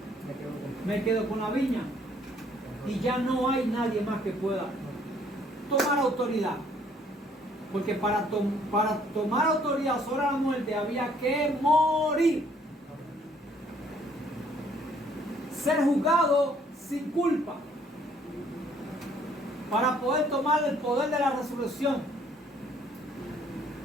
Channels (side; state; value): both; normal; correlation 0.63